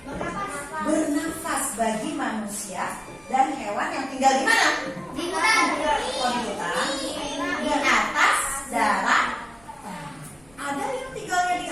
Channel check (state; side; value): noise; right; rumble, 28 dB below the sound